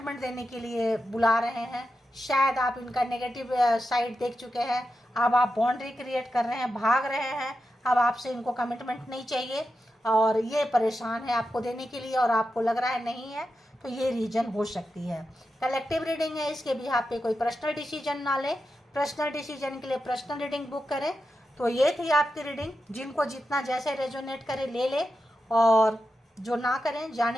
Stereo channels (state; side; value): normal; both; correlation 0.89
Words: देने के लिए बुला रहे हैं। शायद आप इनका नेगेटिव साइड देख चुके हैं, अब आप बाउंड्री क्रिएट कर रहे हैं, भाग रहे हैं, अब आपसे इनको कमिटमेंट नहीं चाहिए और ये परेशान है आपको देने के लिए, और आपको लग रहा है नहीं है, तो ये रीजन हो सकती है। कलेक्टिव रीडिंग है, इसके भी आप पे कोई पर्सनल डिसीजन ना लें, पर्सनल डिसीजन के लिए पर्सनल रीडिंग बुक करें। तो ये थी आपकी रीडिंग, जिनको जितना जैसे रेजोनेट करे ले ले, और जो ना करें